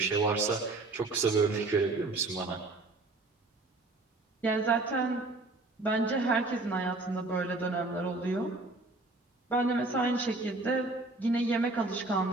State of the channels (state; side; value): quieter; left; 3.2 dB